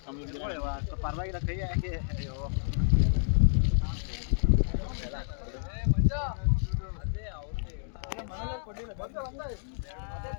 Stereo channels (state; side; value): silent; right; digital silence